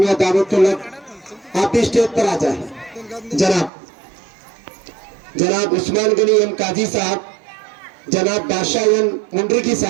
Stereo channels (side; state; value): left; drops out; at 3.7 s